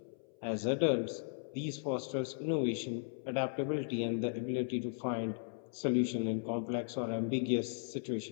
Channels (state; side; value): silent; right; 53 dB below the other